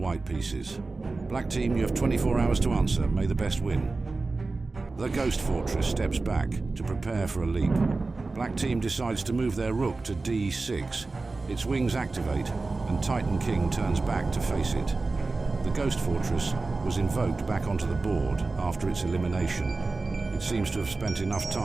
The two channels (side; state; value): left; quieter; 3.6 dB